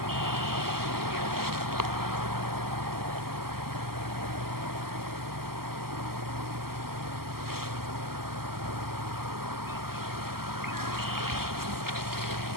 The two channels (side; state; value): left; late; 0.93 ms